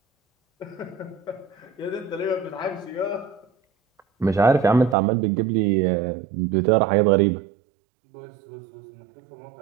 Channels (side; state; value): left; drops out; at 5.0 s